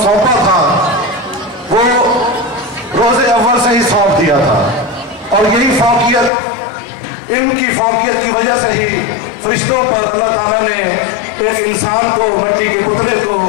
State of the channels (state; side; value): drops out; right; at 6.3 s